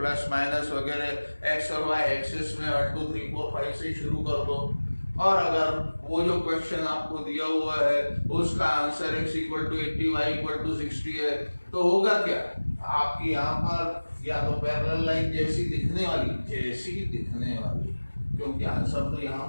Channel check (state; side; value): inverted; both; correlation -1.00